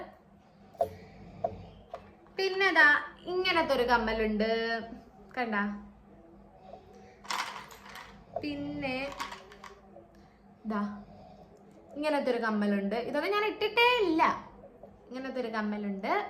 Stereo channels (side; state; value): both; identical; correlation 1.00